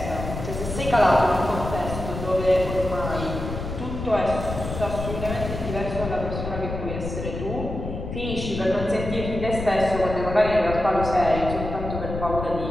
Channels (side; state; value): left; noise; rumble, 6 dB below the sound